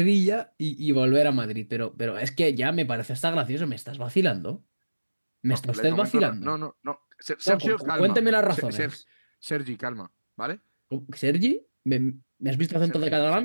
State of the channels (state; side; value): inverted; both; correlation -1.00